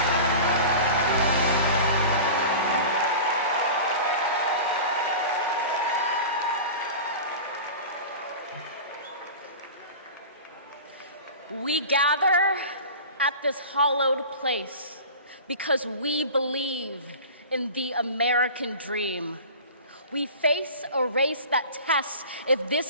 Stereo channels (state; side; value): inverted; both; correlation -0.35